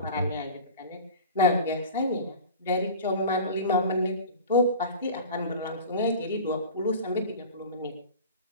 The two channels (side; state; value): both; inverted; correlation -0.36